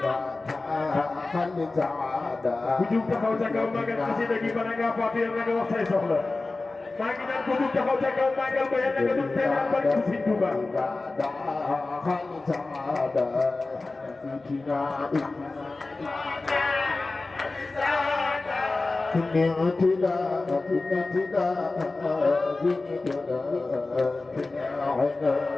خل سعادة Kujung taxaw ca kaw magal xasida gi bala nga fatir na nga wax say soxla maa ngi naan kujung taxaw ca kaw magal ba yàlla nga dul teelal ba ci Sëñ Tuuba خل سعادة كني اعتداء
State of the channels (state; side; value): quieter; right; 3.4 dB